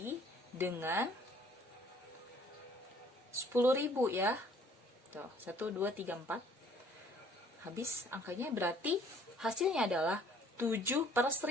dengan 10.000 ya. Tuh, 1 2 3 4. Habis angkanya, berarti hasilnya adalah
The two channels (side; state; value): both; normal; correlation 0.58